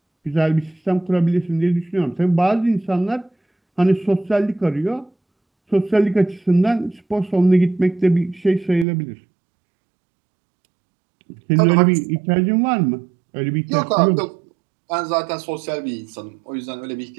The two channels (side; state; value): left; drops out; at 8.8 s